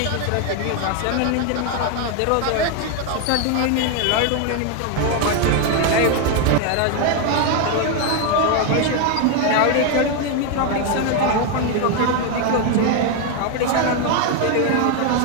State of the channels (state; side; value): different; both; correlation 0.01